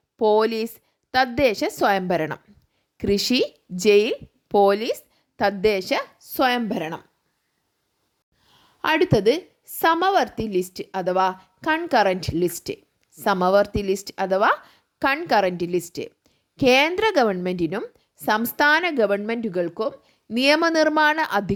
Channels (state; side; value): identical; both; correlation 1.00